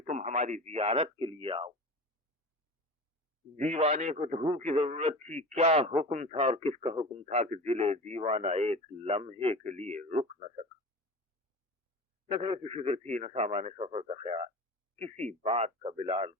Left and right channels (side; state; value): both; normal; correlation 0.33